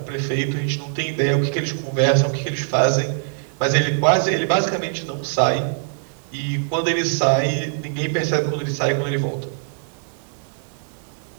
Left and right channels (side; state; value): left; silent; digital silence